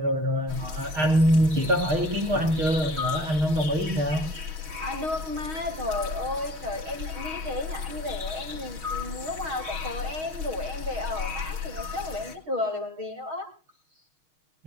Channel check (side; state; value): left; late; 6.2 ms